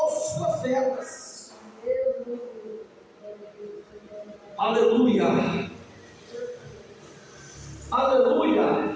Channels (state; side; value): identical; both; correlation 1.00